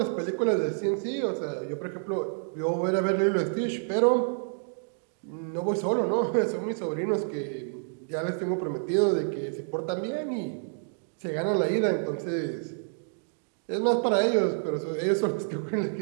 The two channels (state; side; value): silent; left; digital silence